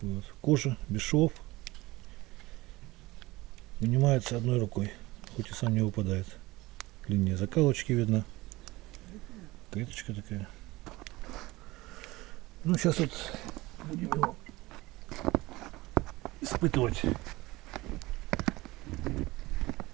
вот. Кожа, без швов. Вынимается одной рукой, хоть и сам не выпадает. Линия закалочки видно. Клеточка такая. Ну, сейчас вот будем его испытывать.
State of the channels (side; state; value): left; quieter; 20.1 dB